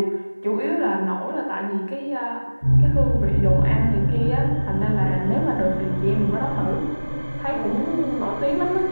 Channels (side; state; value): both; inverted; correlation -1.00